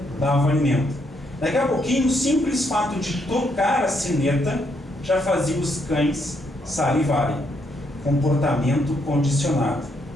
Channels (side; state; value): both; normal; correlation 0.75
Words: dava o alimento. Daqui a pouquinho, o simples fato de tocar a sineta já fazia os cães salivarem. Comportamento condicionado.